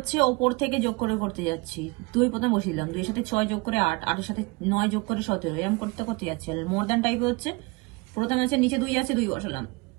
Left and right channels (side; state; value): left; quieter; 26.3 dB